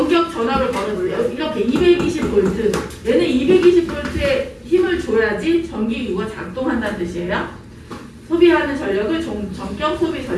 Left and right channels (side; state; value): both; identical; correlation 1.00